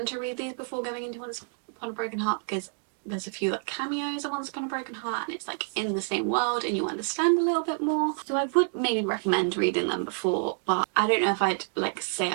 to read these before going into Once Upon a Broken Heart because there's a few like cameos in Once Upon a Broken Heart, and it's like in the same world and you understand a little bit more. So I would maybe recommend reading them before, but I don't know if I'd like say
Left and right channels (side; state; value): left; silent; 59 dB below the other